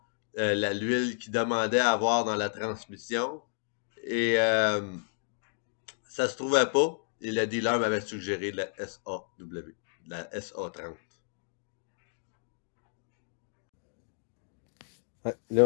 l'huile qu'il demandait à avoir dans la transmission. Et ça se trouvait pas. Et le dealer m'avait suggéré de la SAW, de la SA30. Ouais, là,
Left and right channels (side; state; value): right; silent; digital silence